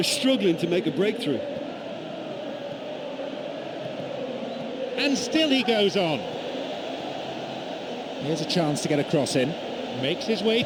struggling to make a breakthrough. And still he goes on. Here's a chance to get a cross in. Makes his way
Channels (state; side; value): identical; both; correlation 1.00